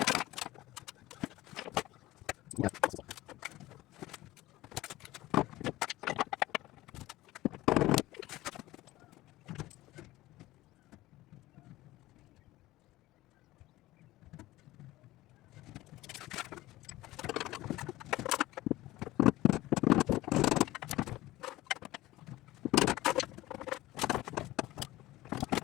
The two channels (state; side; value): quieter; right; 17.3 dB